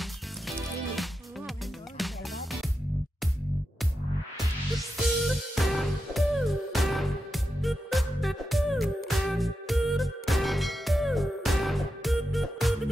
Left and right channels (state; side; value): normal; both; correlation 0.89